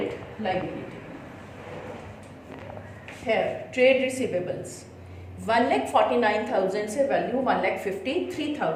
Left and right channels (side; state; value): both; identical; correlation 1.00